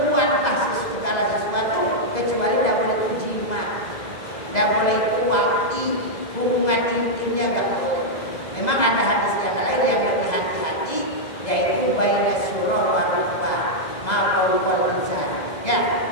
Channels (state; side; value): late; right; 2.0 ms